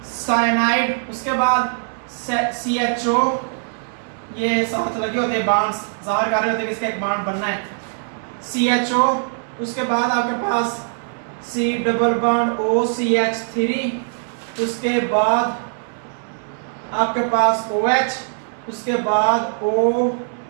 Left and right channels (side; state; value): left; silent; 64 dB below the other